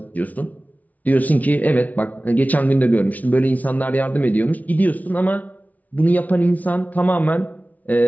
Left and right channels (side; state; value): right; late; 0.074 ms